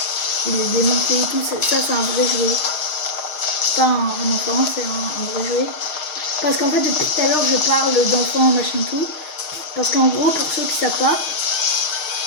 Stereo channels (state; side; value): late; right; 6.4 ms